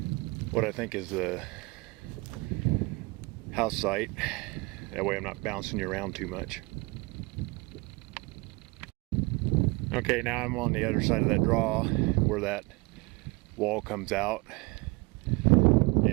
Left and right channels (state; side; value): quieter; left; 26.0 dB